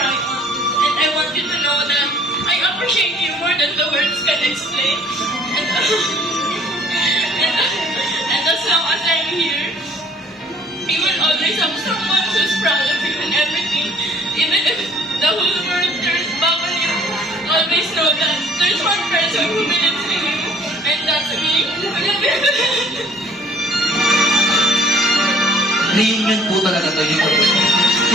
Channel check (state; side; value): normal; both; correlation 0.55